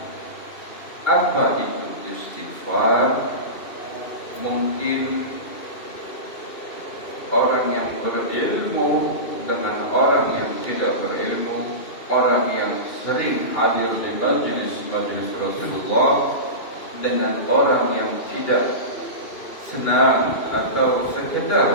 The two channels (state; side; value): late; right; 2.7 ms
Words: apa itu istighfar, mungkin orang yang berilmu dengan orang yang tidak berilmu, orang yang sering hadir di majlis Rasulullah dengan orang yang tidak senang atau